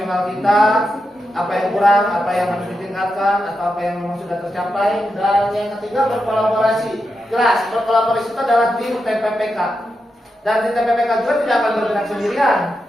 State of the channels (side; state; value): both; normal; correlation 0.87